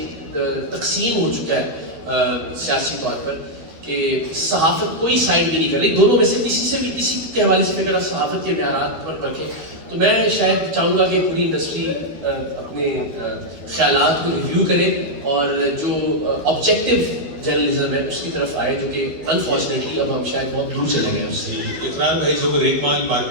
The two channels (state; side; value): late; left; 12 ms